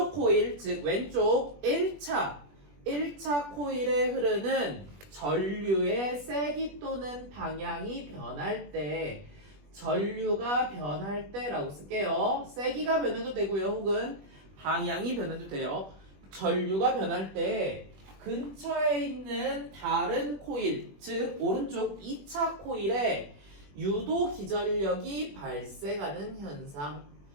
코일, 즉 왼쪽 1차 코일에 흐르는 전류의 세기 또는 방향이 변할 때 전류가 변할 때라고 쓸게요. 세기가 변해도 되고요. 혹은 방향이 변해도 돼요. 전류가 변할 때 근처에 있는 다른 코일, 즉 오른쪽 2차 코일에 유도 기전력이 발생하는 현상,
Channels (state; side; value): late; left; 21 ms